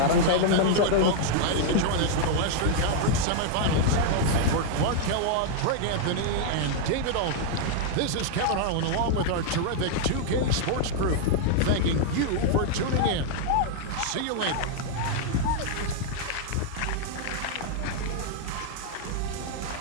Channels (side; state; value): both; different; correlation 0.00